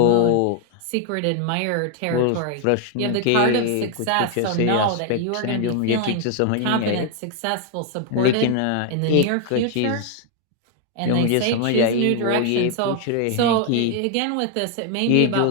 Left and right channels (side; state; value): both; different; correlation 0.00